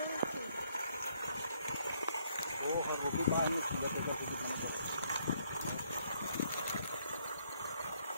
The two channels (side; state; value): both; inverted; correlation -0.70